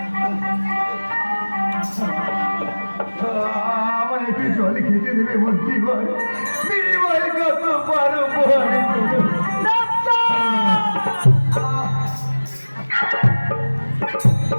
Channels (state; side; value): inverted; both; correlation -1.00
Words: আমার একটু জল খেতে দেবে মোর জীবন বিনিময়ে কত পারো ওঠো